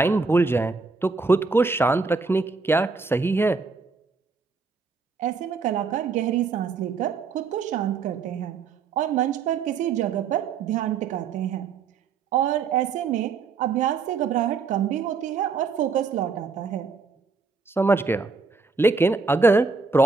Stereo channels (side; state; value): left; quieter; 4.7 dB